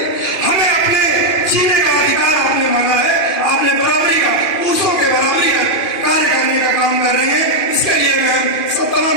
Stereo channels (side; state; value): right; late; 2.4 ms